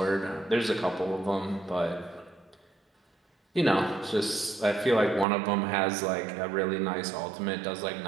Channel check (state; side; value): drops out; left; at 5.2 s